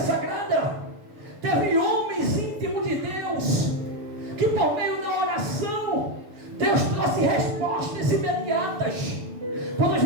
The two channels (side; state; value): left; late; 6.8 ms